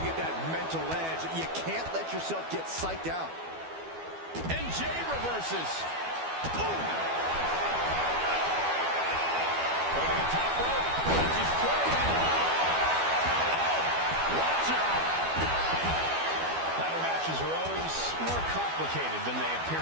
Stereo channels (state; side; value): late; left; 12 ms